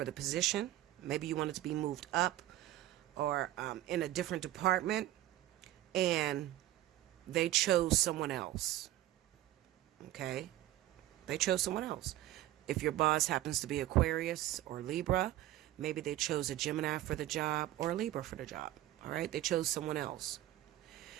the position. Maybe you wanted to be moved up or in a different department, and they chose someone else. Okay? They chose someone else. If your boss happens to be Aquarius or Libra, maybe they chose a Gemini for the job or a Libra for the job. All right? They chose someone else.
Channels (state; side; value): quieter; left; 14.6 dB